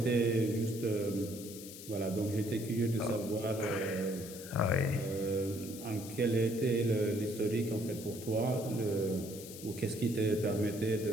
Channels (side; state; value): left; noise; hiss, 13 dB below the sound